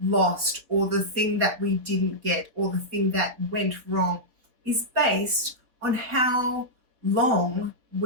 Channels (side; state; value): left; late; 4.1 ms